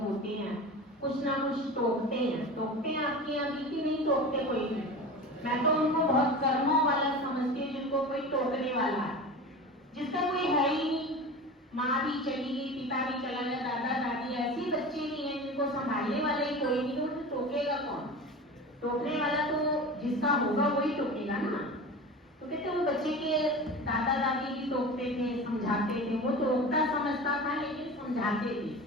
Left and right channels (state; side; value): normal; both; correlation 0.32